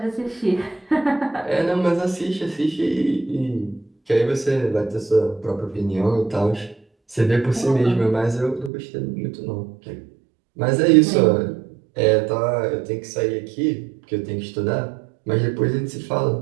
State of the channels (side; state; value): left; drops out; at 8.7 s